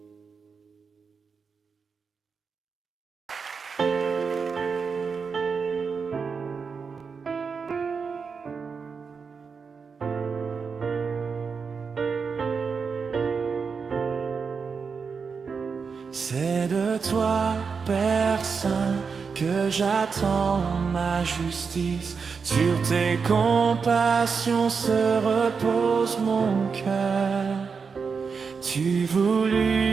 C'est de toi, Père Saint, que j'attends ma justice. Sur tes compassions se repose mon cœur. Tu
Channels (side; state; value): left; quieter; 5.5 dB